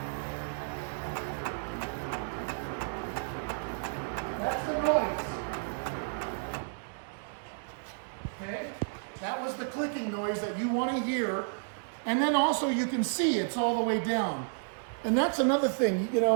That's the noise. Okay? That was the clicking noise that you want to hear. And then also you can see it's all the way down. And that's another thing, you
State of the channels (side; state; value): left; silent; 57 dB below the other